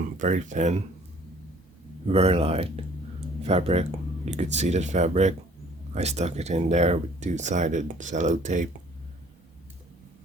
very thin, very light fabric. You could see that fabric. I stuck it in there with two-sided cello tape.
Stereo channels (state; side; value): normal; both; correlation 0.55